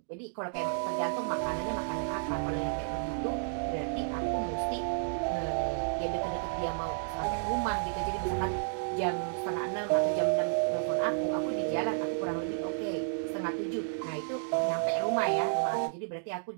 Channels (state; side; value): silent; left; digital silence